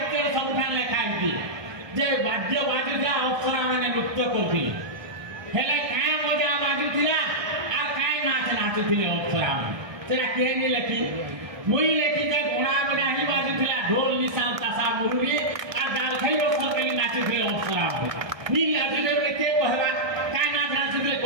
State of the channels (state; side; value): late; left; 1.2 ms